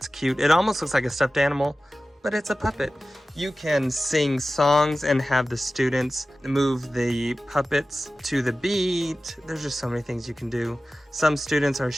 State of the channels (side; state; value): both; normal; correlation 0.95